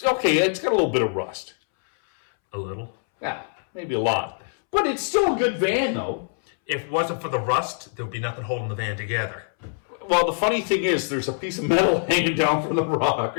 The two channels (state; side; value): silent; right; 63 dB below the other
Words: okay. It's got a little bit of rust. A little. Yeah, maybe a lot. But it's still a good van, though. If it wasn't for the rust, there'd be nothing holding the van together. Well, the funny thing is, there's a piece of metal hanging down from the